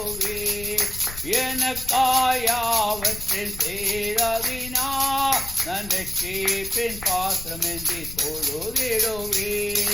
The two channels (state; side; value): noise; left; rumble, 13 dB below the sound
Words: எனக்காயாவற்றில் செய்தவினார் அந்த சேப்பின் பாத்திரம் ஏந்தி